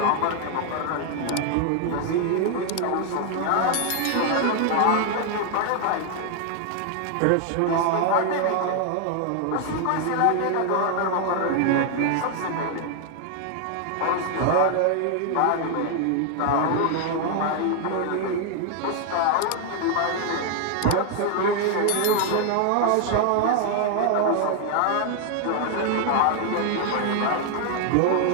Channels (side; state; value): both; different; correlation 0.00